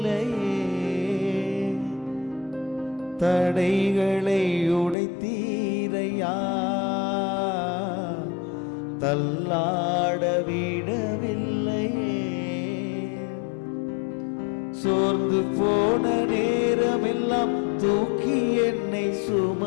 தடைகளை உடைத்தீரையா, தள்ளாட விடவில்லையே. சோர்ந்து போன நேரமெல்லாம் தூக்கி என்னை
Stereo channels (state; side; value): drops out; right; at 5.0 s